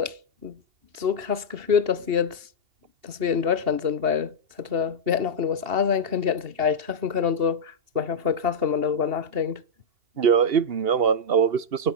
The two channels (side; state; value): left; late; 2.8 ms